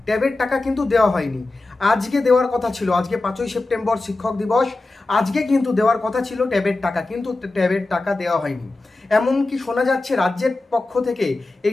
ট্যাবের টাকা কিন্তু দেওয়া হয়নি। আজকে দেওয়ার কথা ছিল, আজকে 5ই সেপ্টেম্বর শিক্ষক দিবস, আজকে কিন্তু দেওয়ার কথা ছিল ট্যাবের টাকা, কিন্তু ট্যাবের টাকা দেওয়া হয়নি। এমনকি শোনা যাচ্ছে রাজ্যের পক্ষ থেকে এই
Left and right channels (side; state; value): right; quieter; 3.1 dB